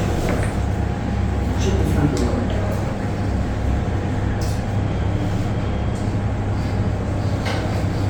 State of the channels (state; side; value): identical; both; correlation 1.00